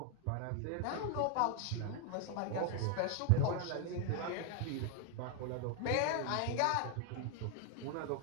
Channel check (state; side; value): different; both; correlation 0.00